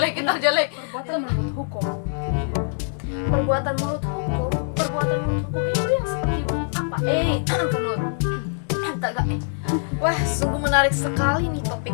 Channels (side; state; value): right; silent; digital silence